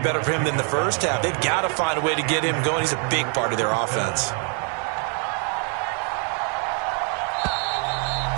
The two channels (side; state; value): left; quieter; 39.2 dB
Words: for him than the first half. They've got to find a way to get him going. He's a big part of their offense.